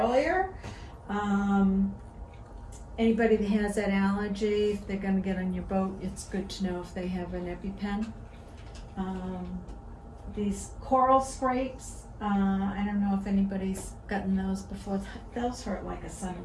Anybody that has that allergy, if they're gonna get on your boat, it's good to know if they have an EpiPen. These coral scrapes, I don't know if anybody's gotten those before. Those hurt like a son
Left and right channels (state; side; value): identical; both; correlation 1.00